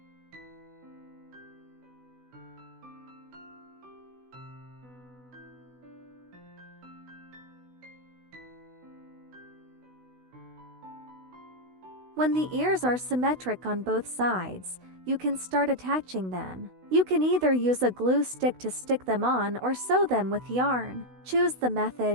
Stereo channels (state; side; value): late; left; 16 ms